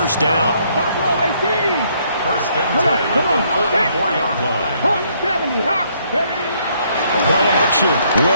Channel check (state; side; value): inverted; both; correlation -0.69